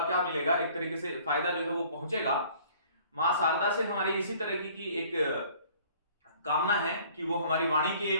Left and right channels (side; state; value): both; inverted; correlation -0.54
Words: मिलेगा, एक तरीके से फायदा जो है वो पहुंचेगा। मां शारदा से हमारी इसी तरह की एक कामना है कि वो हमारी वाणी के